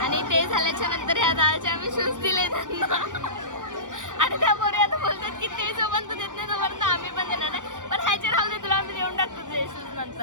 आणि ते झाल्याच्या नंतर ह्या दाळचे आम्ही शूज दिले त्यांना. आणि त्या पोरी आता बोलतात की ते जोपर्यंत देत नाही तोपर्यंत आम्ही पण देणार नाही. पण ह्याचे राहू दे, तुला आम्ही देऊन टाकतो तुझे शूज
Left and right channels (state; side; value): late; left; 0.87 ms